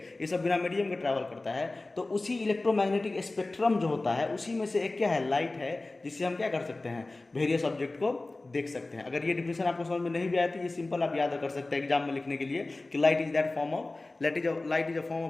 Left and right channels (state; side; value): quieter; right; 3.1 dB